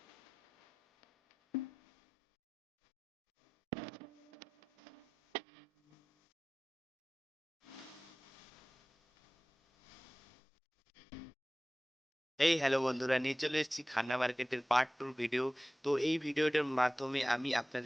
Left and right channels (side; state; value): both; normal; correlation 0.97